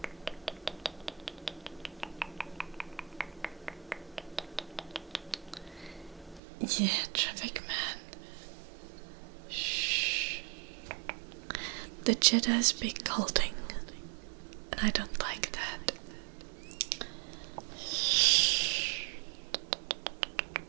Yeah, traffic man. Shh. The Jedi speak culting, and I don't like that.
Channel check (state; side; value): drops out; left; at 6.4 s